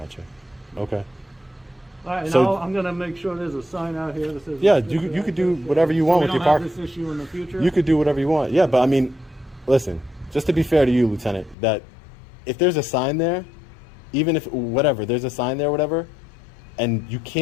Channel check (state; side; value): drops out; right; at 11.6 s